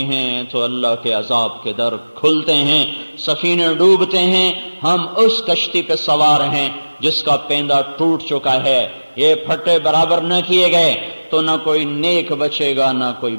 ہیں تو اللہ کے عذاب کے در کھلتے ہیں، سفینے ڈوبتے ہیں، ہم اس کشتی پہ سوار ہیں جس کا پیندہ ٹوٹ چکا ہے، یہ پھٹے برابر نہ کیے گئے تو نہ کوئی نیک بچے گا نہ کوئی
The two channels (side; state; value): both; inverted; correlation -1.00